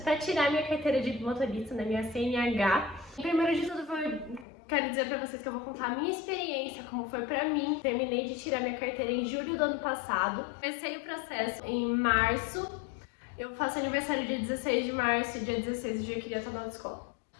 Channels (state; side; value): drops out; right; at 4.5 s